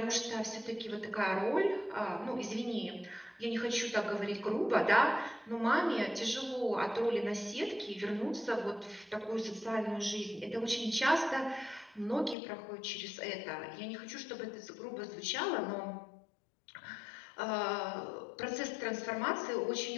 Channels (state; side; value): drops out; right; at 12.4 s